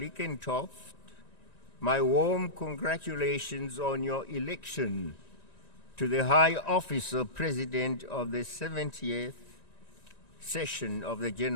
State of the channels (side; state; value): right; late; 1.9 ms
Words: my warm congratulations on your election to the high office of President of the 70th session of the